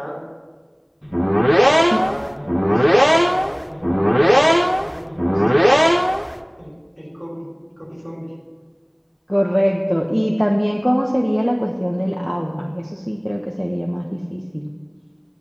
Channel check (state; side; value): identical; both; correlation 1.00